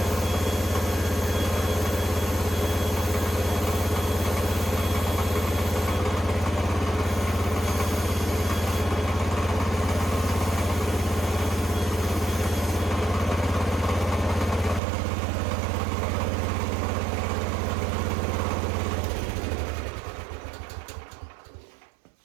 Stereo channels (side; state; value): left; drops out; at 14.8 s